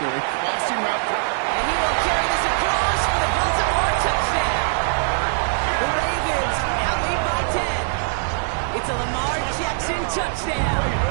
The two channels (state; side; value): silent; left; digital silence